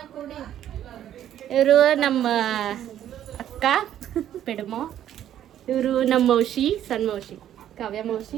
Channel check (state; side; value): quieter; left; 11.1 dB